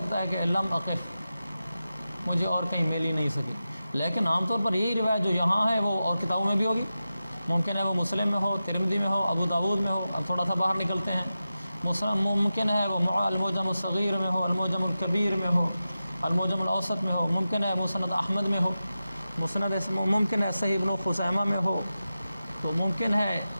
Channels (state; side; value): inverted; both; correlation -0.93